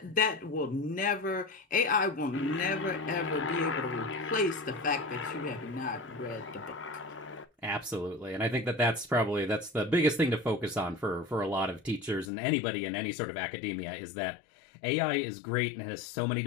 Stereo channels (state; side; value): drops out; right; at 12.3 s